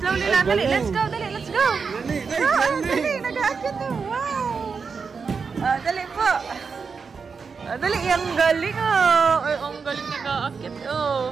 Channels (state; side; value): quieter; left; 5.4 dB